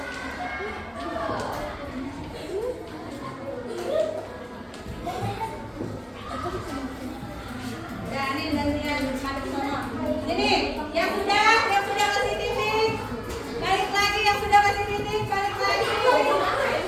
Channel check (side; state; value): both; identical; correlation 1.00